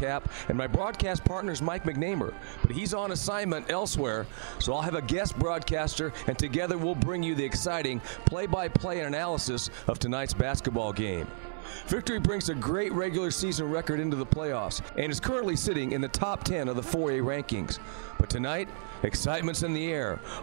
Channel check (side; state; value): left; silent; 57 dB below the other